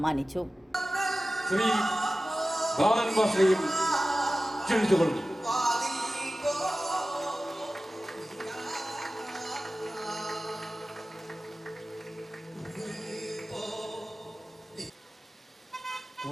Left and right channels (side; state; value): both; normal; correlation 0.96